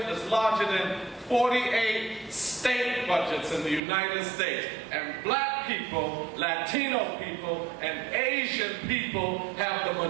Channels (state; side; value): drops out; left; at 3.8 s